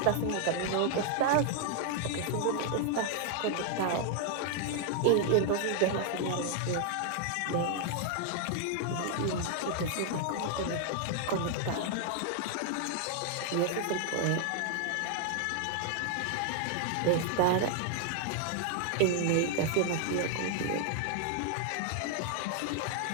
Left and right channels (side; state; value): both; different; correlation 0.00